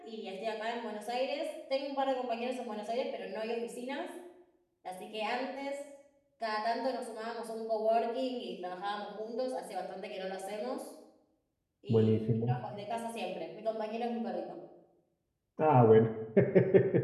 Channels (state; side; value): identical; both; correlation 1.00